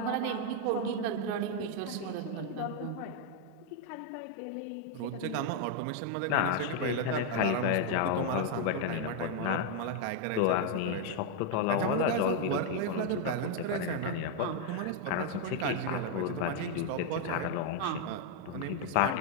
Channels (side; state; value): both; different; correlation 0.01